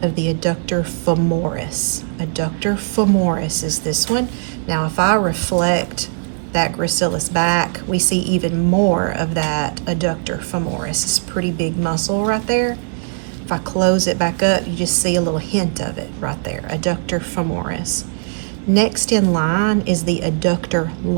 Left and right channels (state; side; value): silent; left; 67 dB below the other